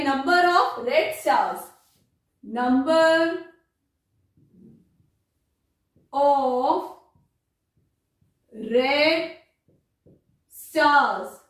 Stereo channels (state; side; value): identical; both; correlation 1.00